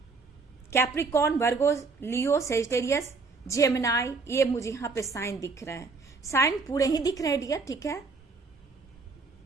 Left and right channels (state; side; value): quieter; left; 4.2 dB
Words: कैप्रिकॉर्न, वर्गो, लियो, सेजिटेरियस, जेमिनाई, ये मुझे यहाँ पे साइन दिख रहे हैं। साइन पूरे ही दिख रहे हैं डियर, ठीक है।